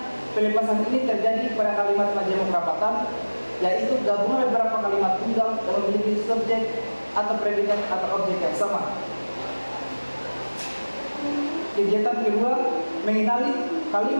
pelepasan ini terjadi pada kalimat majemuk rapatan, yaitu gabungan beberapa kalimat tunggal yang memiliki subjek atau predikat atau objek yang sama. Kegiatan kedua, mengenali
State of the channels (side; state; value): both; inverted; correlation -1.00